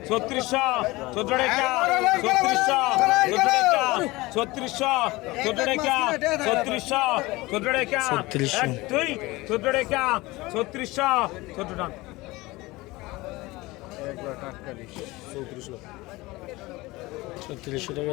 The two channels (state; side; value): quieter; right; 20.9 dB